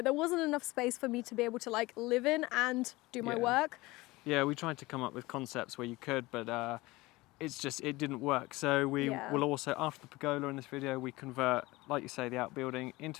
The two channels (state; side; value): quieter; right; 20.9 dB